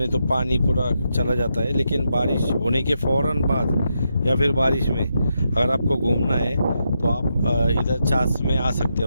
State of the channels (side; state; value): both; inverted; correlation -0.83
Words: तो पानी पूरा चला जाता है, लेकिन बारिश होने के फ़ौरन बाद या फिर बारिश में अगर आपको घूमना है तो आप इधर चास में आ सकते